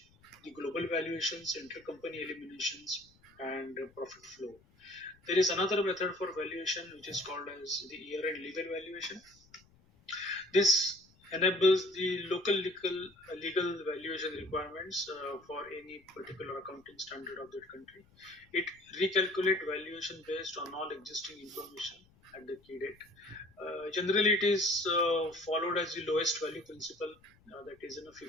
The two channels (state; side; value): noise; left; rumble, 30 dB below the sound